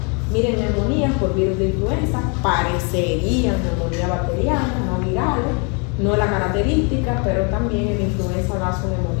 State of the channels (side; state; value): right; quieter; 34.9 dB